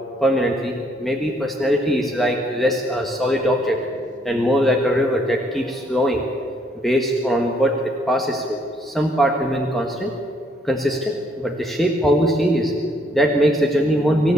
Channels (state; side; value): normal; both; correlation 0.68